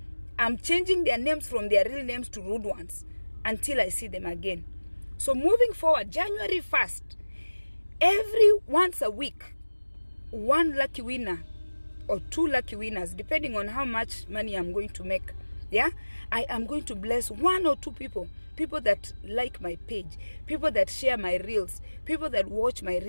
I'm changing their names from their real names to rude ones until I see them again. So moving forward, January 1st, every once a week, one lucky winner or two lucky winners, depending on how much money I'm going to make, Yeah, I am going to bless 1 or 2 people that like my page, people that share my reels, people that watch my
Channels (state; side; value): inverted; both; correlation -1.00